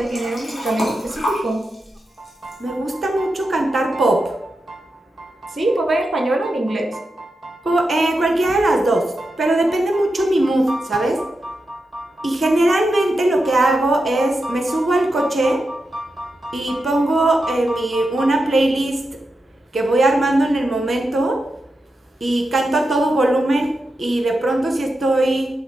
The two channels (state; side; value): normal; both; correlation 0.88